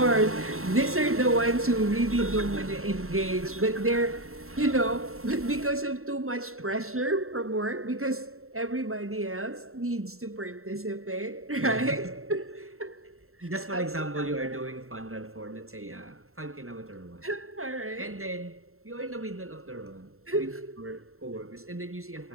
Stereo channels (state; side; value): late; left; 0.62 ms